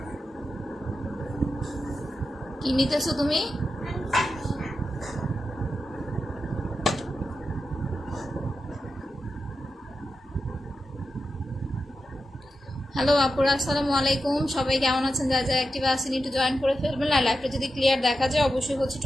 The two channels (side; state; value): both; normal; correlation 0.90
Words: কি নিতেছো তুমি? হ্যালো আপুরা, আসসালামু আলাইকুম। সবাই কেমন আছেন? যা যা অ্যাক্টিভ আছেন একটু জয়েন করে ফেলবেন। আর লাইভটা যদি ক্লিয়ার দেখা যায় অবশ্যই হচ্ছে